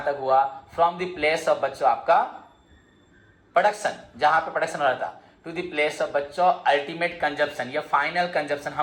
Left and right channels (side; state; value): both; identical; correlation 1.00